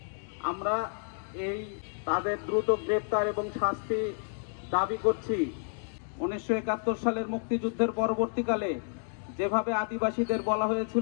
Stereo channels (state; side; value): silent; right; 58 dB below the other